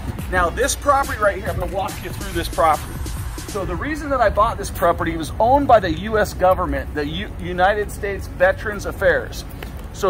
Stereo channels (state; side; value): identical; both; correlation 1.00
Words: Now this property right here, I'm gonna walk you through this property. So the reason that I bought this property was owned by the US government, the United States Veterans Affairs.